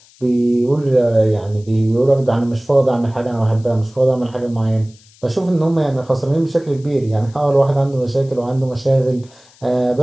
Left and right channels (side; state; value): left; noise; hiss, 28 dB below the sound